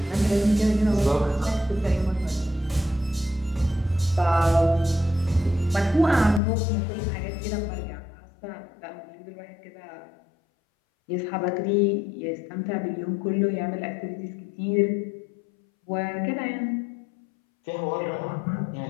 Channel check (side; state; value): right; drops out; at 6.4 s